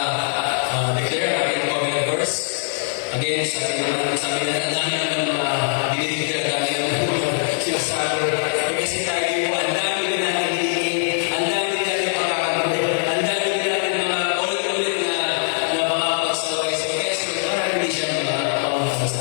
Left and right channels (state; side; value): silent; right; digital silence